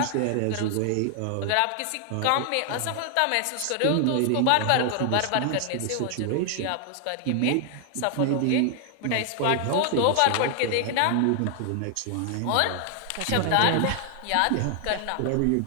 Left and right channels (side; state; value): both; different; correlation 0.00